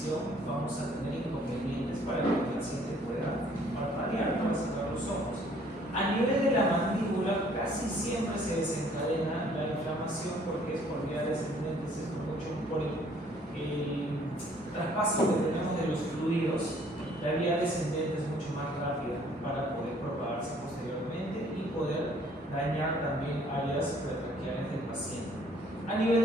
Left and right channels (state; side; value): normal; both; correlation 0.59